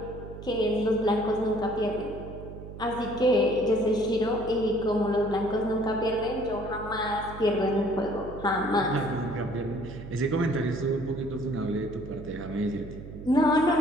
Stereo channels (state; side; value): noise; right; hum, 12 dB below the sound